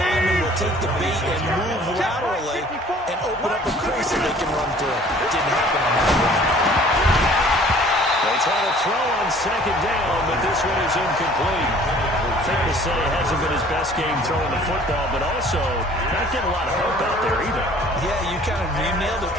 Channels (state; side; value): normal; both; correlation 0.52